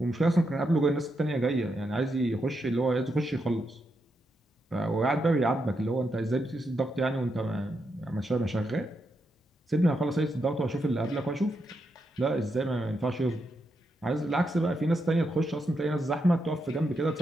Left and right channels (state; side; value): normal; both; correlation 0.83